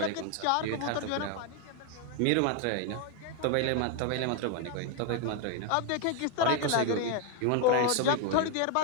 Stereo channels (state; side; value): different; both; correlation 0.01